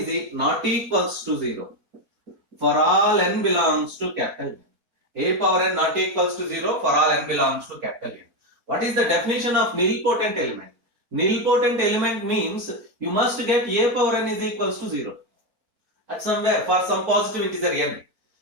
not equals to 0 for all n belongs to capital N. A power n not equals to 0 for all n belongs to capital N. What is the definition of nilpotent element? Nilpotent element means you must get A power n is equals to 0 at somewhere for some positive integer n.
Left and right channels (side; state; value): left; late; 4.4 ms